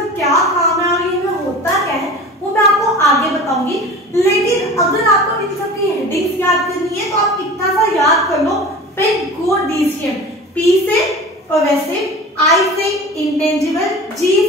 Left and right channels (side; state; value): both; normal; correlation 0.37